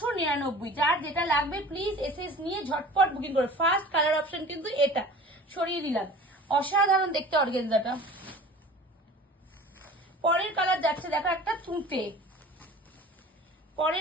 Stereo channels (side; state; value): both; normal; correlation 0.42